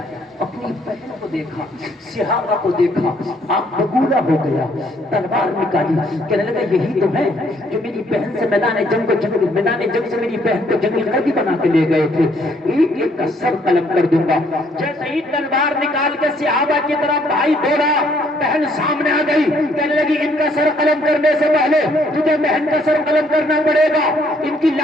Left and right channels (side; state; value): both; normal; correlation 0.66